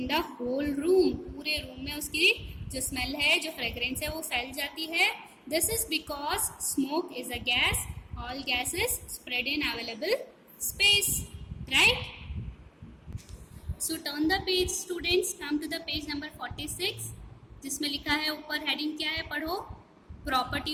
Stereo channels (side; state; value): both; identical; correlation 1.00